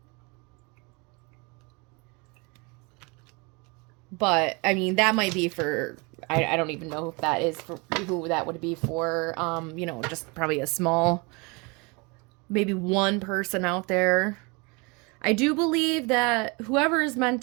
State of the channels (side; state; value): left; quieter; 29.1 dB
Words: But, I mean, that might be for, I don't even know if that is for, who that would be for, you know, just probably a small, maybe one person out there. I do believe that whoever is meant